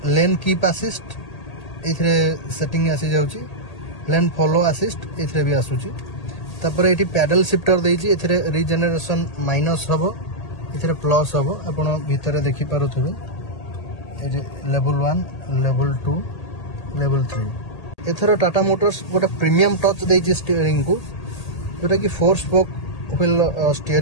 lane keep assist ये सेटिंग आसी जाऊँगी लेन फॉलो असिस्ट ये भी आसूची तापर ये पैडल शिफ्टर देती रिजेनरेशन माइनस हम ये प्लस हम आप भितर देखिपे लेवल 1 लेवल 2 लेवल 3 एथर टाटा मोटर्स गोटे प्रीमियम टच देती स्टीयरिंग को जोटा कि 4 स्पोक व्हील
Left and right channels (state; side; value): late; right; 1.8 ms